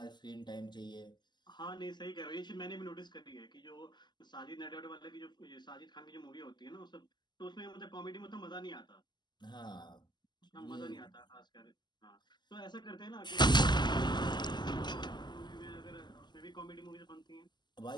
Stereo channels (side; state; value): right; late; 0.21 ms